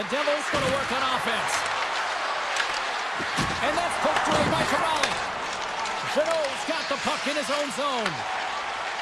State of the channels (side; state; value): both; identical; correlation 1.00